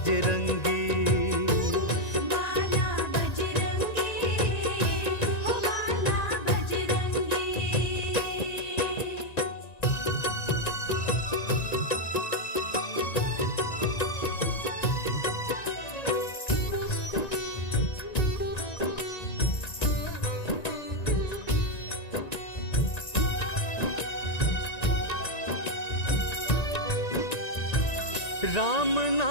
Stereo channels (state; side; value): late; right; 1.9 ms